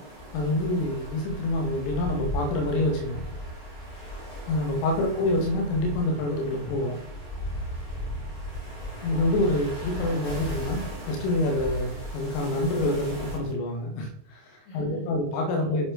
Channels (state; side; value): late; right; 27 ms